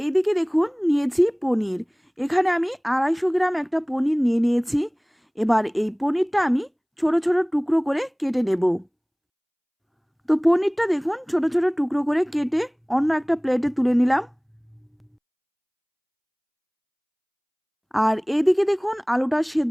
এইদিকে দেখুন, নিয়েছি পনির। এখানে আমি 250 গ্রাম একটা পনির নিয়ে নিয়েছি। এবার এই পনিরটা আমি ছোট ছোট টুকরো করে কেটে নেব। তো পনিরটা দেখুন ছোট ছোট টুকরো করে কেটে অন্য একটা প্লেটে তুলে নিলাম। আর এইদিকে দেখুন, আলুটা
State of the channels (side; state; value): both; identical; correlation 1.00